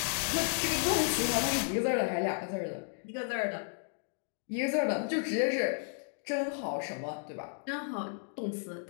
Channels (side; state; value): right; silent; digital silence